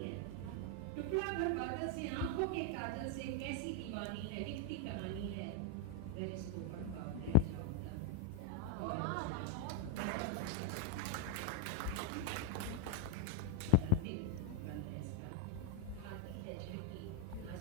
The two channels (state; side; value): different; both; correlation 0.00